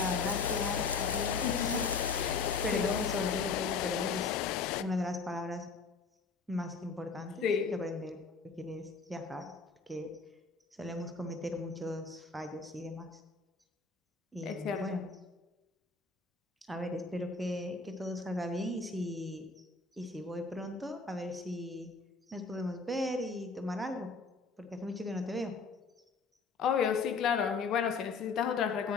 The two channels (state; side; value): quieter; right; 4.7 dB